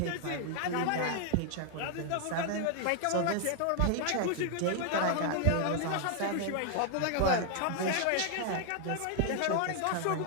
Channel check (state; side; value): different; both; correlation 0.00